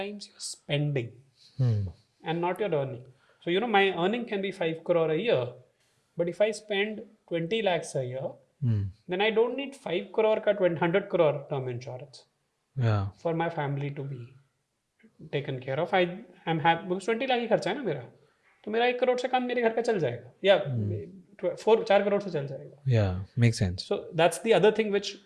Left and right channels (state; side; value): identical; both; correlation 1.00